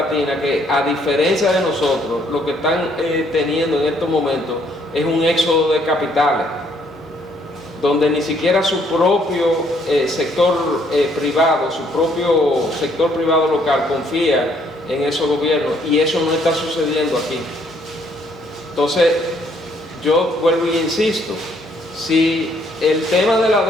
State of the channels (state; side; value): normal; both; correlation 0.67